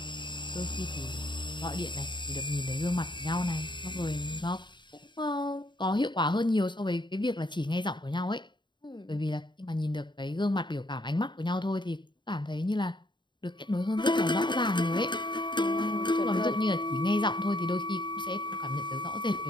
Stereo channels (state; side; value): late; right; 0.22 ms